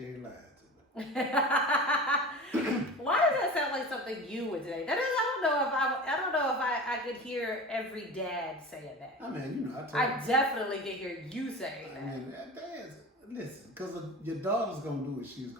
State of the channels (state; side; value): normal; both; correlation 0.34